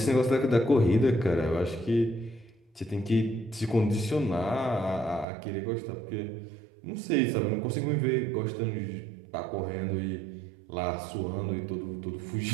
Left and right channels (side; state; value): left; drops out; at 5.2 s